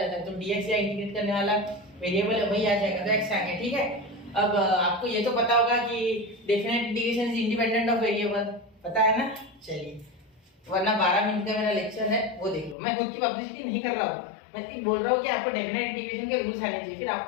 है, तो dx या इंटीग्रेट करने वाला वेरिएबल है वही आ जाएगा, तो x आ गया। ठीक है, अब आपको ये तो पता होगा कि definite integration is independent of variable, पता है ना? चलिए, वरना 12 मिनट का मेरा लेक्चर है, वो देख लो। मैं खुद की पब्लिसिटी नहीं कर रहा हूँ, मैं सिर्फ बोल रहा हूँ कि आपको डेफिनेट इंटीग्रेशन के रूल्स आने चाहिए, फिर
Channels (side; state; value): right; drops out; at 12.8 s